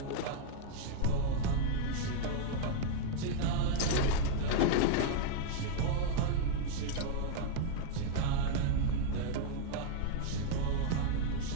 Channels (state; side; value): different; both; correlation 0.00